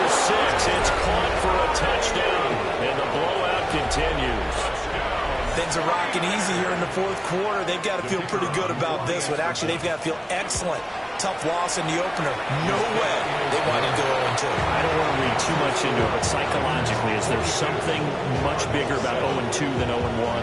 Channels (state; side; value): identical; both; correlation 1.00